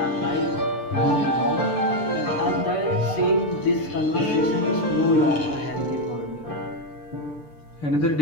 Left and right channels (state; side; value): late; right; 6.7 ms